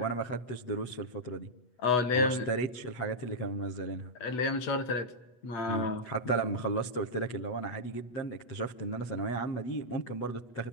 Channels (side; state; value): right; late; 8.1 ms